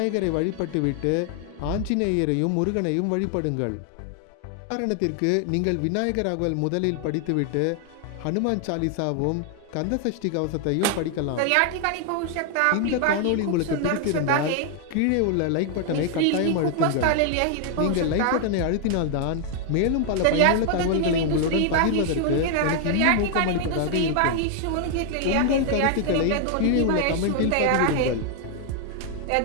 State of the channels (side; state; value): both; different; correlation 0.00